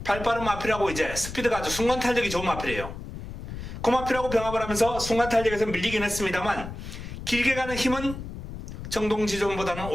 발빠른 마필하고 이제 스피드가 아주 순간 탄력이 좋은 마필이에요. 그 마필하고 병합을 하면서 순간 탄력에서 밀리긴 했습니다만 길게 가는 힘은 정동지전보다는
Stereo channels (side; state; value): left; noise; rumble, 9 dB below the sound